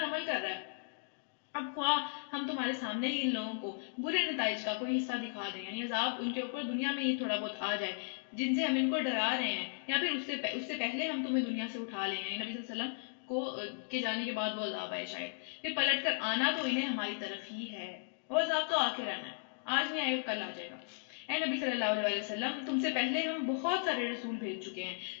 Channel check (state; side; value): silent; right; digital silence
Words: عمل کر رہا ہے۔ اب خواہ ہم تمہارے سامنے ہی ان لوگوں کو برے نتائج کا کوئی حصہ دکھا دیں، یعنی عذاب ان کے اوپر دنیا میں یہ تھوڑا بہت آ جائے جن سے ہم ان کو ڈرا رہے ہیں، یا پھر اس سے پہلے ہم تمہیں دنیا سے اٹھا لیں، یعنی نبی صلی اللہ علیہ وسلم کو کے جانے کے بعد وہ عذاب آئے شاید، پھر پلٹ کر آنا تو انہیں ہماری طرف ہی ہے، وہ عذاب تو آ کے رہنا ہے، آج نہیں آئے گا کل آ جائے گا۔ اے نبی صلی اللہ علیہ وسلم تم سے پہلے ہم بہت سارے رسول بھیج چکے ہیں،